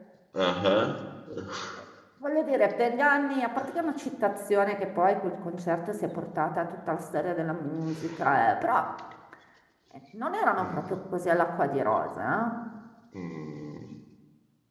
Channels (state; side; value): identical; both; correlation 1.00